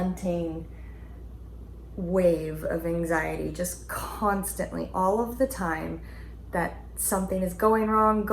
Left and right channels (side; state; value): both; identical; correlation 1.00